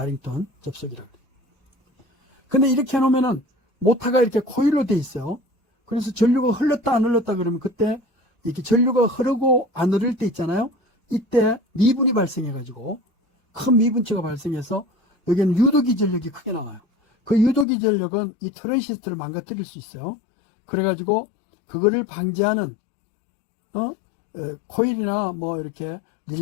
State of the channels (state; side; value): drops out; right; at 17.7 s